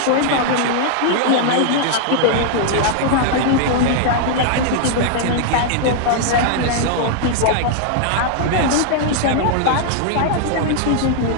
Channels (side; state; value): both; different; correlation 0.00